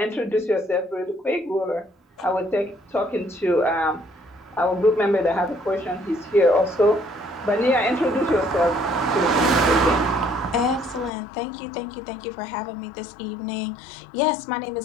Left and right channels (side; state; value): right; drops out; at 11.1 s